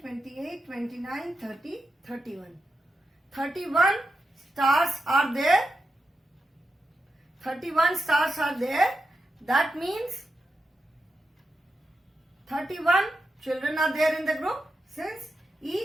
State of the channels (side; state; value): both; normal; correlation 0.88